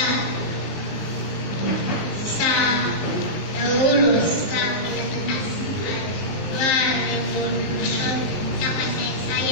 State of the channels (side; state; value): right; late; 19 ms